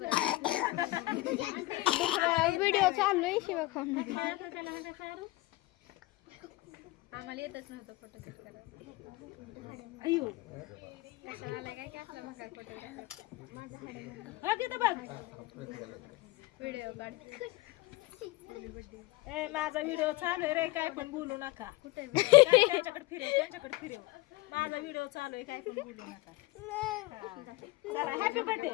व्हिडिओ चालू आहे शिवा खाऊन. आम्हाला येतच नव्हतं फोटोशूट करायला. अयो कशाला आलाय काय असला मग काय फोटोग्राफर. हा तिथं बघ व्हिडिओ काढ. ए माझा व्हिडिओ चालू आहे रे काय पण बोलू नका कुठे काय त्यांच्याकडे फिरव माझा व्हिडिओ चालू आहे काय पण बोलू नका हा. चला हॅपी बर्थडे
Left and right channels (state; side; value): quieter; right; 20.3 dB